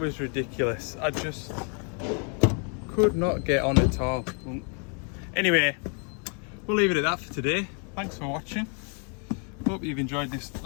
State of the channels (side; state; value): right; quieter; 39.5 dB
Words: ridiculous. I just could not get on at all. Anyway, we'll leave it at that for today. Thanks for watching. Hope you've enjoyed this